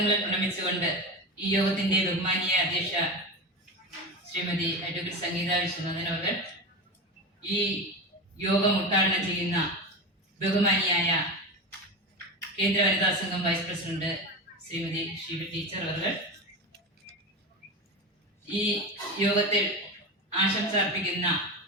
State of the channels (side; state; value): both; normal; correlation 0.23